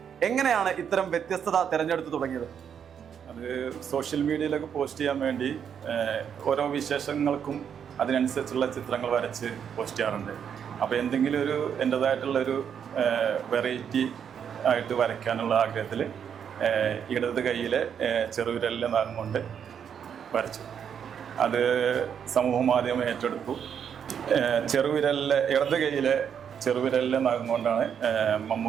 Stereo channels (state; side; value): quieter; left; 8.0 dB